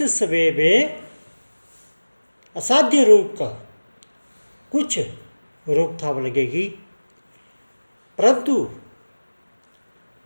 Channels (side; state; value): both; inverted; correlation -1.00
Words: समय में असाध्य रोग का कुछ रोकथाम लगेगी, परंतु